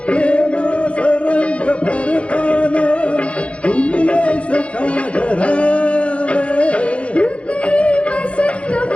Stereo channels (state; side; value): late; right; 0.061 ms